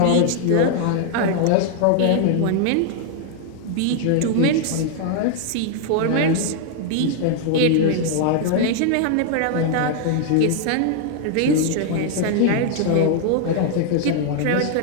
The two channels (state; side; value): different; both; correlation 0.00